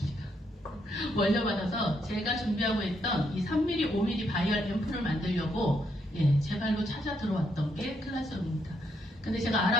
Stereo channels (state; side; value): normal; both; correlation 0.76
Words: 월려받아서 제가 준비하고 있던 이 3mm, 5mm 바이얼 앰플을 만들려고 제 발로 찾아 들어왔던 게 클라스형입니다. 근데 제가